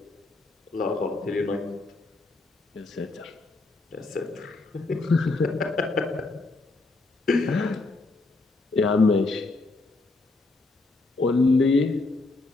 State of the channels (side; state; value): right; quieter; 3.3 dB